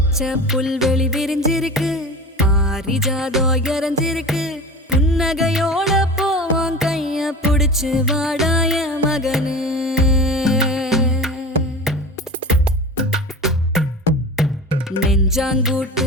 பச்சை புல்வெளி விரிஞ்சிருக்கு, பாரிஜாதம் இறஞ்சிருக்கு. புன்னகையோட போவோம் கைய புடிச்சு வாடாய மகனு.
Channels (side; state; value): both; normal; correlation 0.32